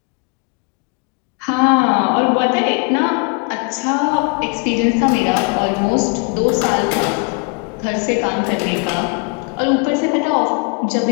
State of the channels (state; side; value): quieter; right; 33.7 dB